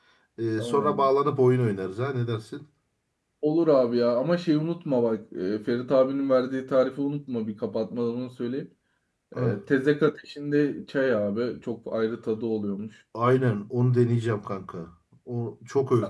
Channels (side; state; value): both; identical; correlation 1.00